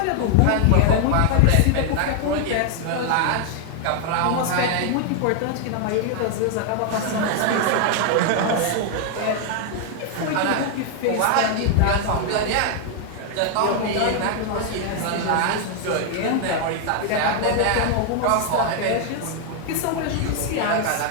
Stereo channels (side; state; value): both; different; correlation 0.00